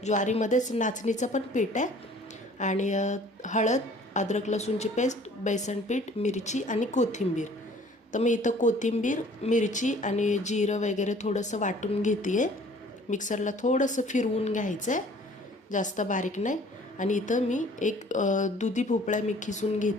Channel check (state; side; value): normal; both; correlation 0.53